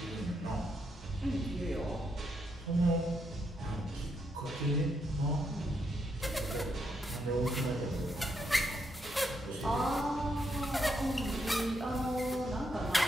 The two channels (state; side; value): normal; both; correlation 0.79